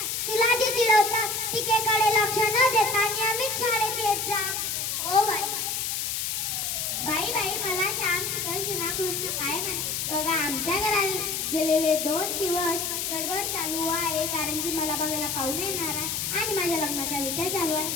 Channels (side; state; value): left; noise; hiss, 1 dB below the sound